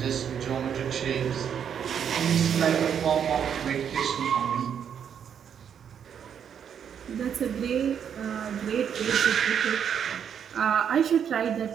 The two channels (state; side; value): quieter; left; 8.2 dB